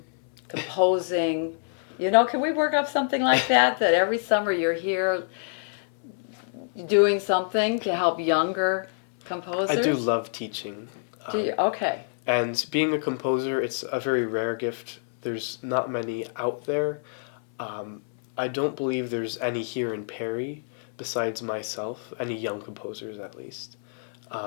composing, You know, can we work up something like that? That every summer you're here doing something to help younger composers? I do love teaching. Do you? Okay. And being a composer, it's a very rare gift. There's not many out there. I don't believe there's any here in Perry besides myself, any young composers at least.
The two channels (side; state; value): right; silent; 60 dB below the other